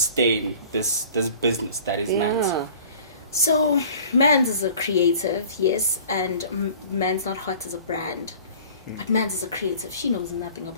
this business that is Mandz? Yeah. So, Mandz is a creative, yes, and Mandz Not Hot is a brand. But Mandz is a creative. She knows nothing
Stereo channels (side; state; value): both; inverted; correlation -0.46